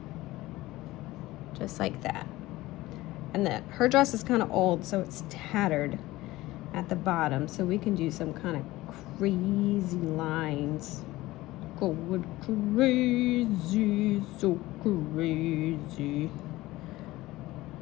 Just like that. And then her dress is kind of old, so it's tattered at the bottom. So we can do some kind of crazy lines. Going crazy, so crazy.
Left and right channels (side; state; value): right; quieter; 18.1 dB